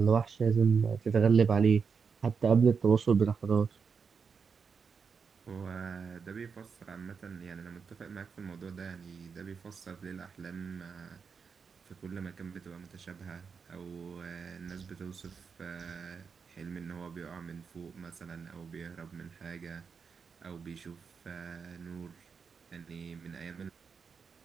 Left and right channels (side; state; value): left; quieter; 5.8 dB